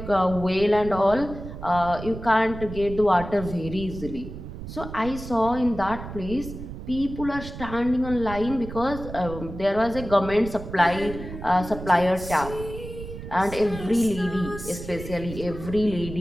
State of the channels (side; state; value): right; noise; rumble, 10 dB below the sound